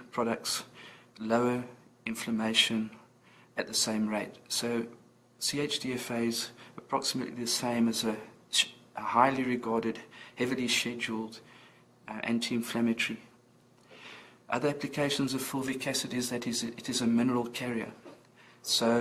products lower inflammation at the same rate. So CHDFA is approximately the same as a highly regarded, heavily scheduled anti-inflammatory. Other applications of fulvic acid is that it is a mineral carrier. So,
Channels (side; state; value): both; identical; correlation 1.00